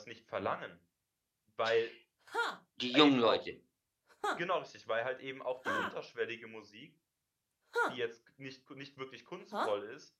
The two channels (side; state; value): both; identical; correlation 1.00